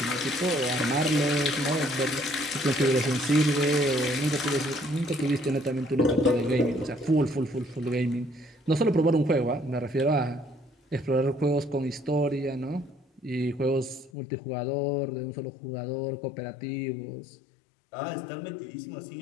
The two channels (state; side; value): drops out; right; at 14.1 s